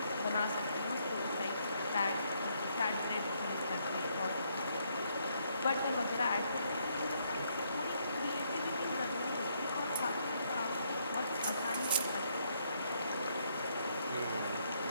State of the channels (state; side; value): inverted; both; correlation -0.73